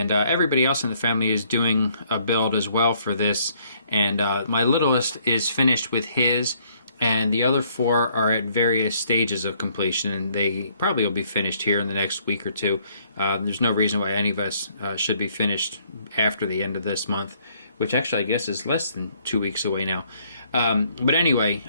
everybody else in the family is doing a build as well for this, and my littlest is finished with his, and the other four are at various stages of completion, and they probably will be finished here in the next week or two. There's no reason why any of us should be finished after the end of this month, which actually I guess is less than 2 weeks away now. But anyway,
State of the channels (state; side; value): inverted; both; correlation -0.65